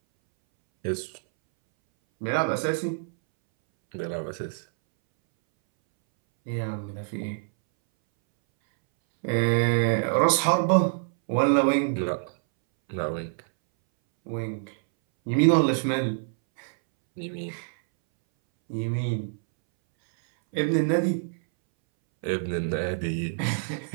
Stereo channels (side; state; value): left; silent; 61 dB below the other